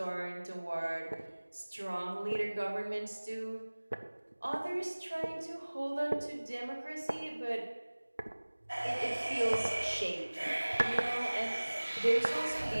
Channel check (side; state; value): both; inverted; correlation -1.00